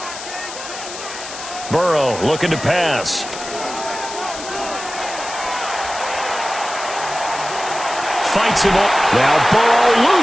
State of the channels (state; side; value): noise; left; hiss, 11 dB below the sound